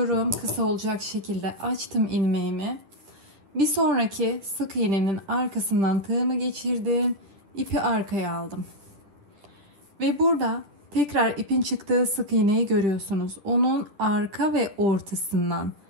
Kısa olacak şekilde açtım ilmeğimi. Bir sonraki sık iğnenin arkasından tığımı geçirdim. İpi arkaya aldım. Ve burada tekrar ipin çıktığı sık iğneyi görüyorsunuz. Onun arka ve ortasından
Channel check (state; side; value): late; left; 10 ms